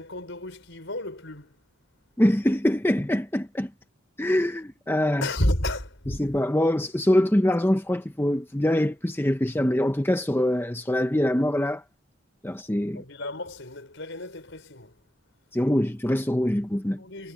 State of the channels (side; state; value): both; normal; correlation 0.90